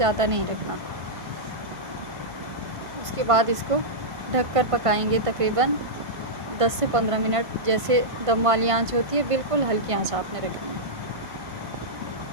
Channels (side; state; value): left; late; 1.5 ms